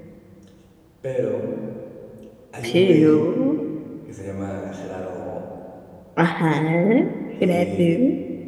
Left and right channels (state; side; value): identical; both; correlation 1.00